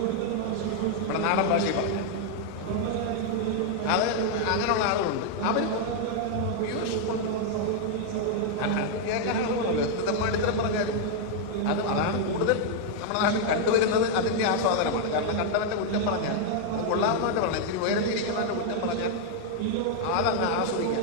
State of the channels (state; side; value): different; both; correlation 0.00